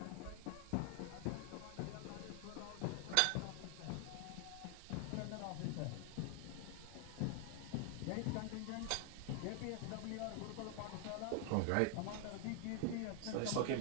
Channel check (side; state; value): both; different; correlation 0.00